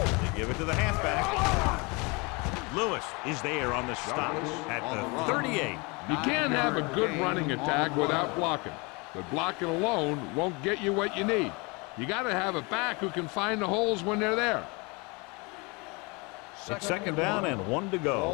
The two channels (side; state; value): right; quieter; 28.3 dB